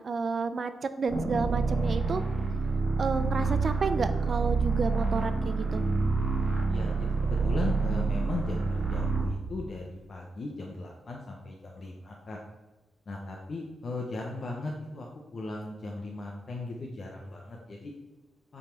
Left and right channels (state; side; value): quieter; left; 3.2 dB